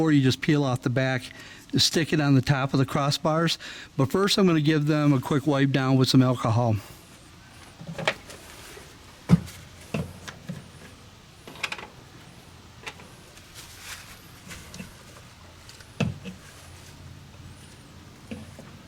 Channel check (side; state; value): both; identical; correlation 1.00